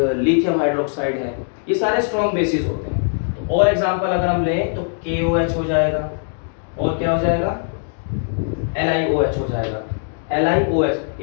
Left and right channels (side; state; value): right; silent; digital silence